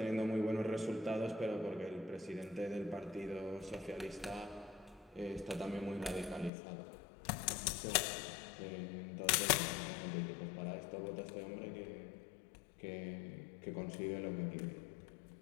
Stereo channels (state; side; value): drops out; right; at 6.5 s